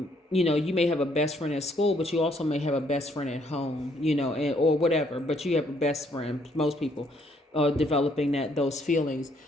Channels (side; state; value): both; normal; correlation 0.68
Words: you know, you may have a best friend at school, but you also may have a best friend at home, you know, or whatever, but you have a best friend. Most people are developing those feelings.